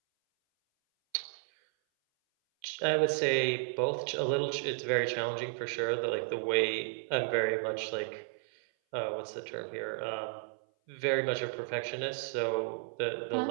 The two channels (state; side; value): silent; left; 56 dB below the other